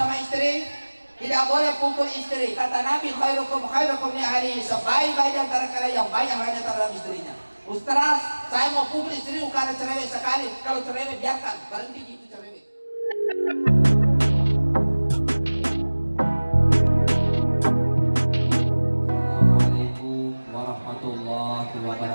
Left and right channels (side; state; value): both; inverted; correlation -1.00